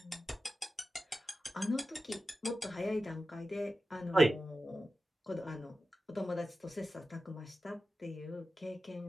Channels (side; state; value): both; normal; correlation 0.93